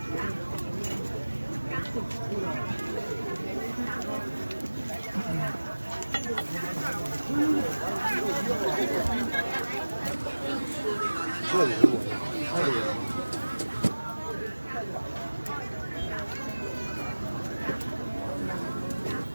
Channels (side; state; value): both; inverted; correlation -1.00